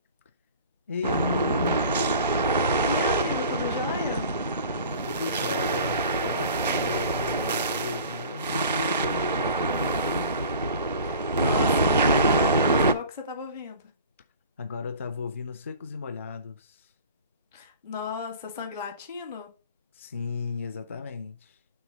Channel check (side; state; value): both; inverted; correlation -0.43